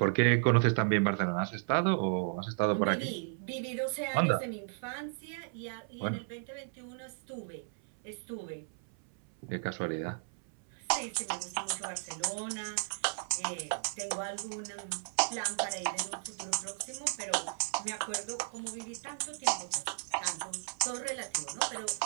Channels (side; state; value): left; silent; 55 dB below the other